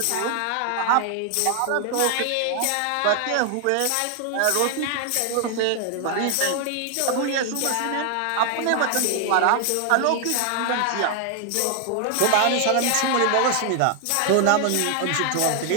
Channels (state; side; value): different; both; correlation 0.00